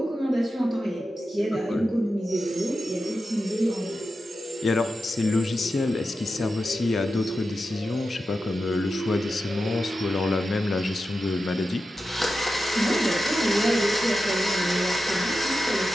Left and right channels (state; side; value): normal; both; correlation 0.91